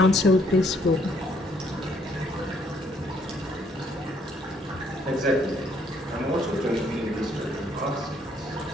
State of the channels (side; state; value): both; normal; correlation 0.67